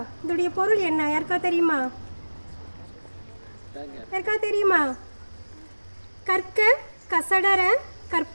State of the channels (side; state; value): both; inverted; correlation -1.00